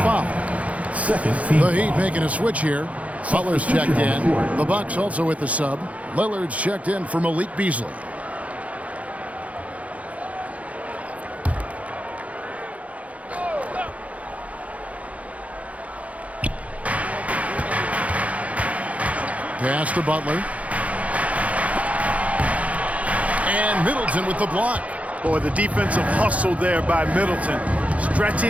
foul. Second team The Heat making a switch here. Butler's checked in. The Bucks also with the sub. Lillard's checked in for Malik Beasley. Pass to Butler. And Middleton with the block. Boy, the defensive hustle there by Middleton.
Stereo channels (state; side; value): late; left; 0.066 ms